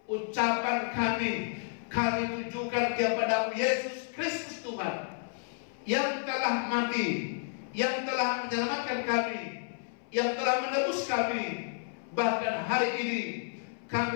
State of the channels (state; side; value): silent; right; 57 dB below the other